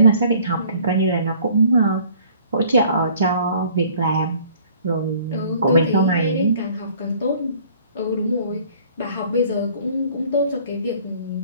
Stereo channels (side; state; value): both; inverted; correlation -0.55